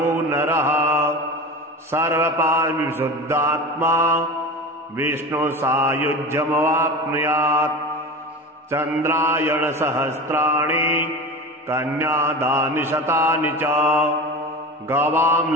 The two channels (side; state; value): both; normal; correlation 0.30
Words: नरः सर्वपापविशुद्धात्मा विष्णुसायुज्यमवाप्नुयात् चन्द्रायणसहस्राणि कन्यादानि शतानि च गवां